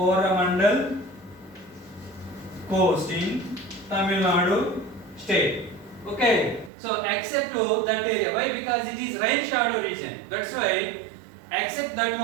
Coast in Tamil Nadu state. Okay, so except to that area. Why? Because it is rain shadow region. That's why, except that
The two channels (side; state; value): left; drops out; at 6.7 s